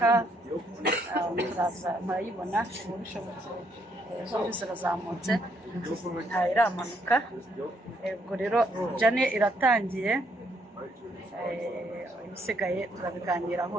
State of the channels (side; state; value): both; normal; correlation 0.72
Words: murayibona ubu bishobotse zombi zirazamutse iramanuka. Ubwo rero jane iratangiye, ibisigaye turabiganiraho